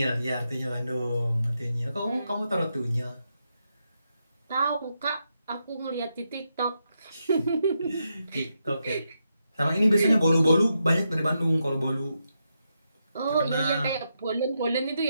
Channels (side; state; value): both; inverted; correlation -0.84